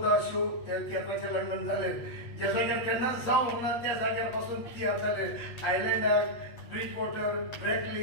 शो त्या तियात्राचे लंडन जाले ज्या जाग्यार केन्नाच जावंक ना त्या जाग्यार पासून तियात्र जाले आयलँडार ब्रिज वॉटर ब्रॅकली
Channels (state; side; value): late; right; 8.3 ms